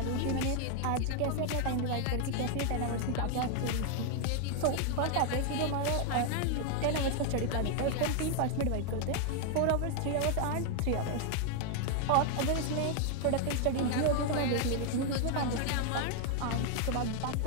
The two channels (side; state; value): both; different; correlation 0.00